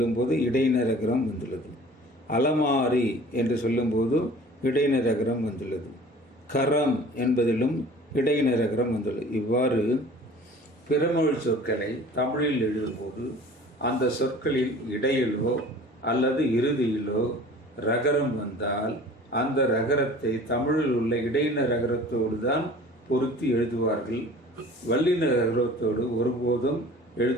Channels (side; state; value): both; normal; correlation 0.45